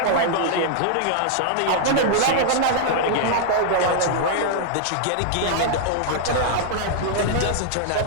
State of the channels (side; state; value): both; different; correlation -0.01